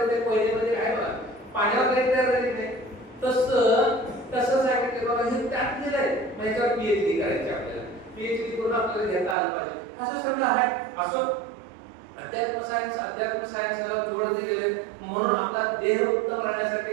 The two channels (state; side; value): drops out; left; at 9.3 s